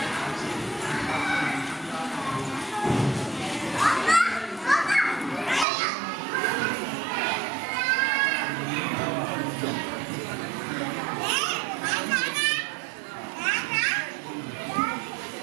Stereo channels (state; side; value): drops out; left; at 5.7 s